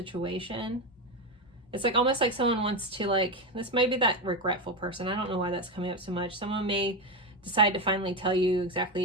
It's like almost like someone wants to, like, this might be that regretful person. I don't know why that's coming up so much. Someone may decide to finally tell you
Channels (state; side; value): normal; both; correlation 0.13